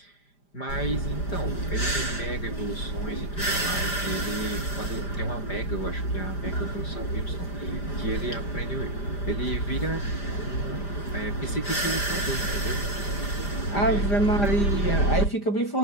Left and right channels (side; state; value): right; late; 5.0 ms